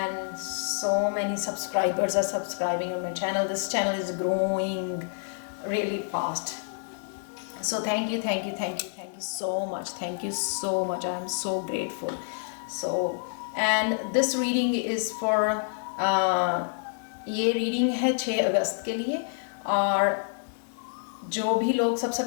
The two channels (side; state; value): right; silent; digital silence